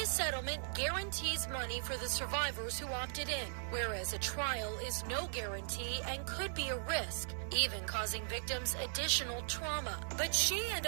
settlement guarantees money for the survivors who opted in, whereas a trial is no guarantee and could be a risk, even causing victims additional trauma. But she and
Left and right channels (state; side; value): silent; left; digital silence